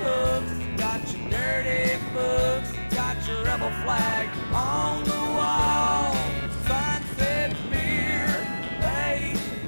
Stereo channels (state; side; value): inverted; both; correlation -1.00